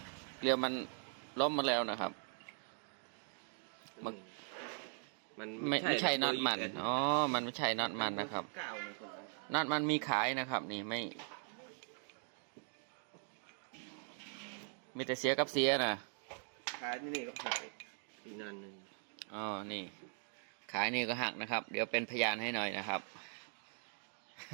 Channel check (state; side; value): silent; left; 51 dB below the other